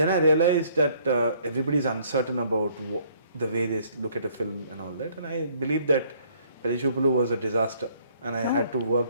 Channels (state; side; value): inverted; both; correlation -0.62